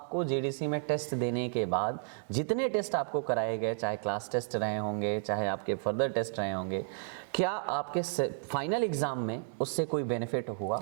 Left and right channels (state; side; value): silent; left; digital silence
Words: जेडीसी में टेस्ट देने के बाद, जितने टेस्ट आपको कराए गए, चाहे क्लास टेस्ट रहे होंगे, चाहे आपके फर्दर टेस्ट रहे होंगे, क्या आपके फाइनल एग्ज़ाम में उससे कोई बेनिफिट हुआ?